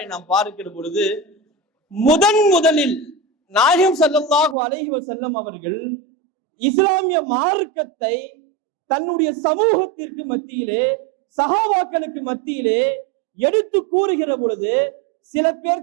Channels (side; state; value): left; drops out; at 4.5 s